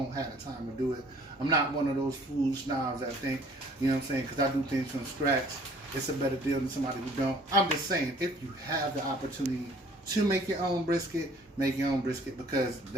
have the time to do it. I'm not one of those food snobs that think, you know what I'm saying, because I do things from scratch, it's a better deal than somebody who don't. I'm just saying, if you have the opportunity, to make your own brisket, make your own brisket, because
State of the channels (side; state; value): both; normal; correlation 0.55